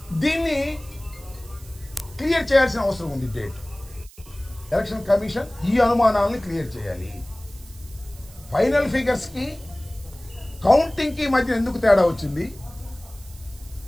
దీన్ని క్లియర్ చేయాల్సిన అవసరం ఉంది. డేట్ ఎలక్షన్ కమిషన్ ఈ అనుమానాలను క్లియర్ చేయాలి. ఫైనల్ ఫిగర్స్కి కౌంటింగ్కి మధ్య ఎందుకు తేడా వచ్చింది?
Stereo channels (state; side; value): noise; right; hiss, 22 dB below the sound